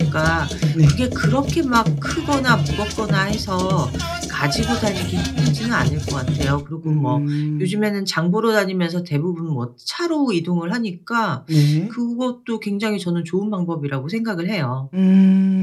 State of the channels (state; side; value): identical; both; correlation 1.00